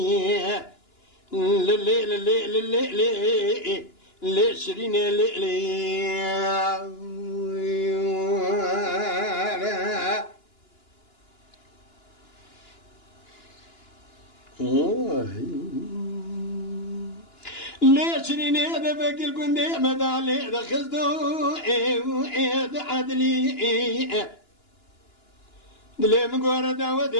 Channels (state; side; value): late; right; 2.9 ms